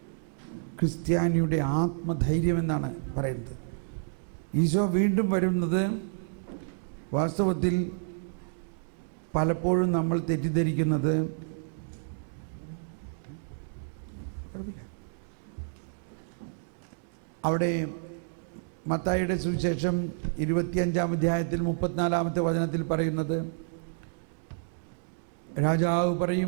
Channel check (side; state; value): left; silent; digital silence